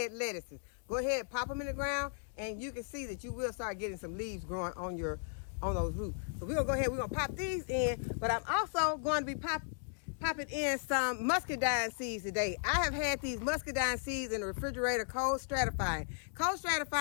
lettuces. Go ahead, pop them in the ground, and you can see that you will start getting some leaves growing on those roots. So we're going to pop these in, but I'm also going to be popping in some muscadine seeds today. I have had these muscadine seeds in the refrigerator cold stratifying. Cold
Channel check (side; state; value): right; silent; digital silence